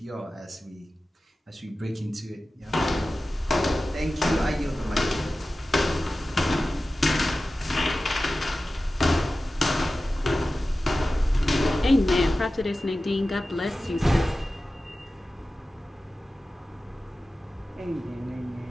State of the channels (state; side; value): normal; both; correlation 0.95